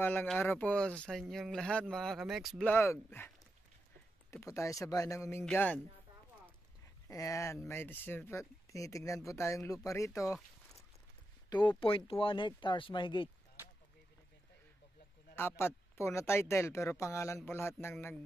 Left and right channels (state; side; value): normal; both; correlation 0.88